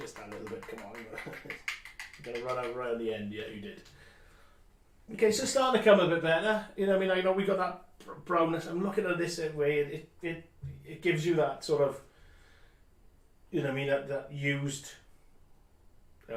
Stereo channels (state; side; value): identical; both; correlation 1.00